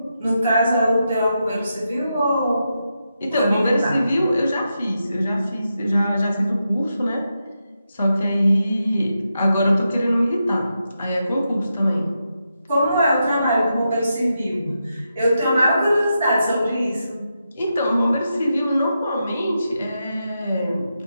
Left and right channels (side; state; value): both; inverted; correlation -0.86